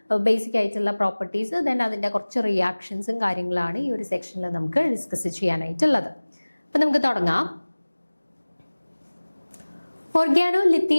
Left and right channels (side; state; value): both; inverted; correlation -1.00